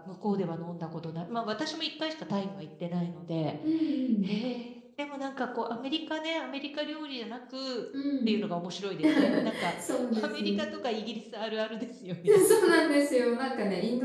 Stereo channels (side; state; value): both; identical; correlation 1.00